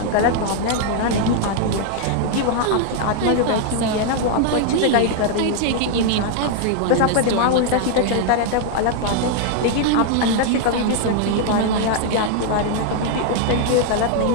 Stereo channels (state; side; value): different; both; correlation 0.00